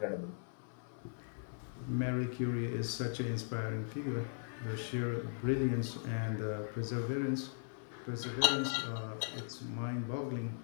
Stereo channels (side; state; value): right; silent; 52 dB below the other